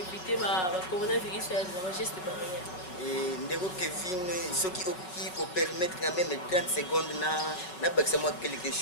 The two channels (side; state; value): right; late; 5.4 ms